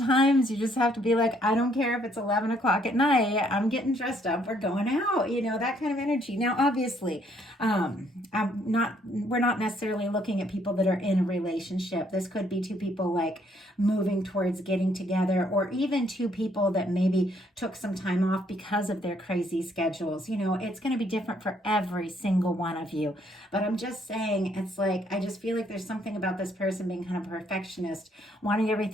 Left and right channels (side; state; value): both; normal; correlation 0.68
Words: you just have to be like, I don't care if it's 11 o'clock at night. I'm getting dressed up. We're going out, that kind of energy. Now, obviously, we're not necessarily looking at people that are in a relationship. This could be 2 people like moving towards getting together, or even 2 people that maybe took some time off because of their crazy schedules. It's going to be different for every single one of you. But I'm just saying, it's like, I just feel like there's something about this person being kind of a perfectionist, wanting